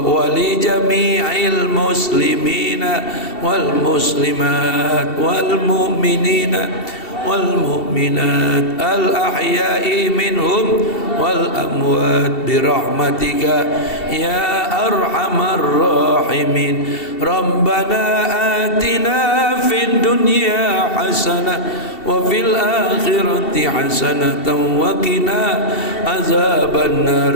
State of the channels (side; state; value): right; late; 2.7 ms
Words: li jami'il muslimina wal muslimat wal mu'minina والمؤمنات الأحياء منهم والأموات برحمتك يا أرحم الراحمين. ربنا آتنا في الدنيا حسنة وفي الآخرة حسنة وقنا عذاب النار